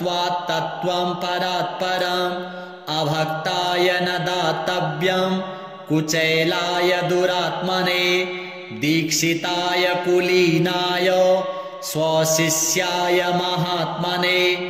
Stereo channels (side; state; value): both; identical; correlation 1.00